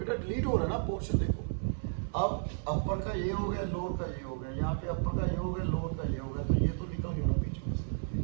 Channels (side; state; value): left; silent; 56 dB below the other